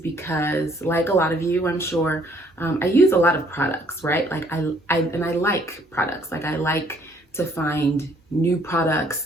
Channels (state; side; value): normal; both; correlation 0.63